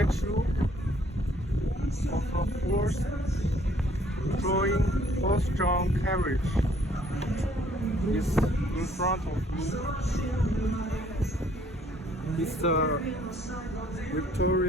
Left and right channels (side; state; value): both; normal; correlation 0.62